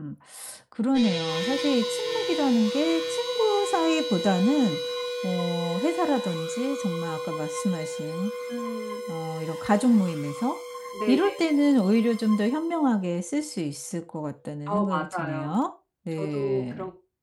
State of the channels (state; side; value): identical; both; correlation 1.00